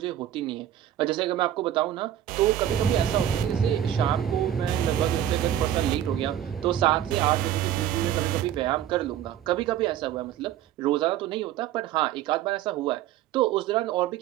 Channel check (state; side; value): quieter; left; 11.4 dB